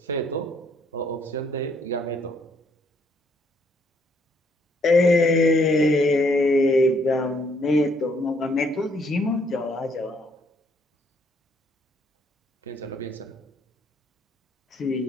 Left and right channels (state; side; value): normal; both; correlation 0.68